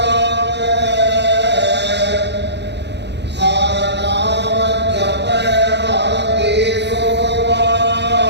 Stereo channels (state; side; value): late; left; 0.50 ms